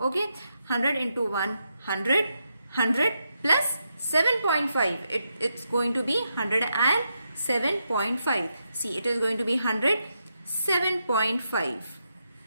100 into 1, 100. 100 plus 7.5. It's going to be 107.5. See, it is going to be 107.5.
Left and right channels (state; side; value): inverted; both; correlation -0.83